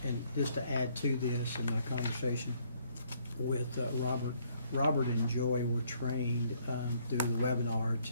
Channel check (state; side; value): inverted; both; correlation -0.67